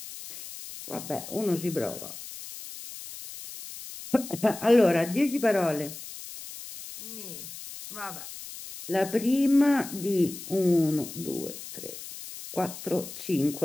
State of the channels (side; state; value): left; noise; hiss, 12 dB below the sound